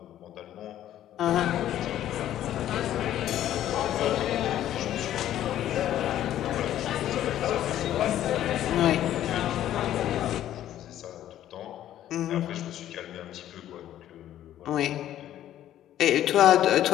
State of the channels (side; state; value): right; quieter; 12.1 dB